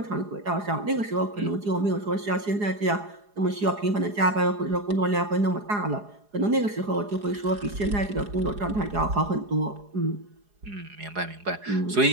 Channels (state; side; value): late; left; 4.8 ms